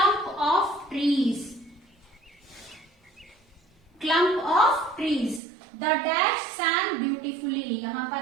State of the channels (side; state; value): left; drops out; at 5.4 s